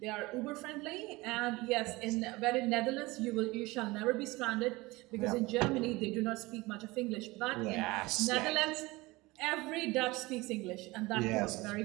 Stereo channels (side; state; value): left; quieter; 21.8 dB